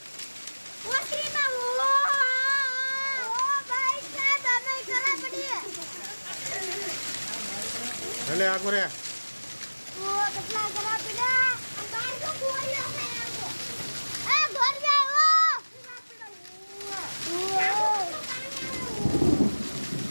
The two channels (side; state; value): both; inverted; correlation -1.00